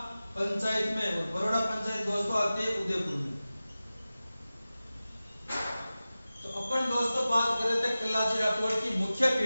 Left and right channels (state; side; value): inverted; both; correlation -0.96